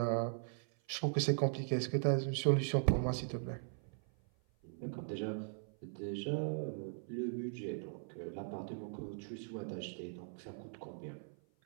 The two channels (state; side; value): silent; left; 51 dB below the other